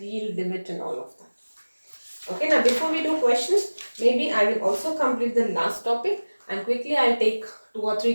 yield limit, and all of that. Okay, now before we do questions, maybe I will also complete the last topic, and quickly I'll take 2 or 3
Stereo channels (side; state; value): both; inverted; correlation -1.00